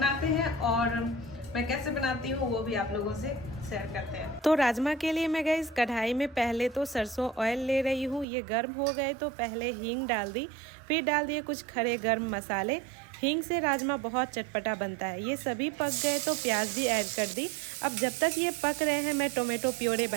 हैं, और मैं कैसे बनाती हूँ वो भी आप लोगों से शेयर करते हैं। तो राजमा के लिए मैं गई कढ़ाई में पहले तो सरसों ऑयल ले रही हूँ। ये गर्म हो गए तो पहले हींग डाल दी, फिर डाल दिए कुछ खड़े गर्म मसाले। हींग से राजमा बहुत चटपटा बनता है। ये सभी पक गए तो प्याज भी ऐड कर दी। अब जब तक ये पक रहे हैं मैं टोमेटो प्योरे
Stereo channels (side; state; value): left; drops out; at 8.2 s